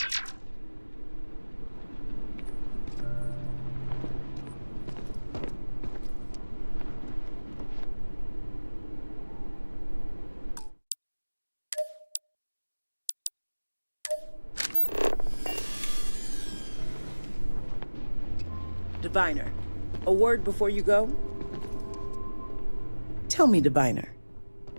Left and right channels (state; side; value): inverted; both; correlation -1.00